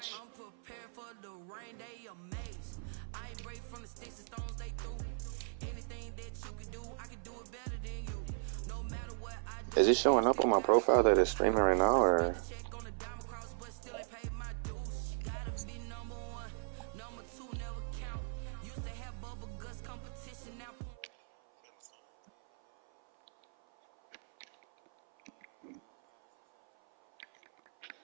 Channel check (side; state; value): left; silent; 53 dB below the other